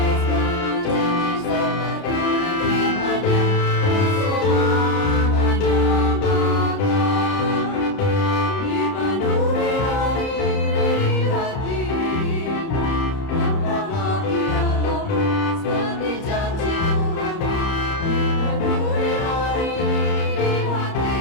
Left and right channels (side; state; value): right; late; 30 ms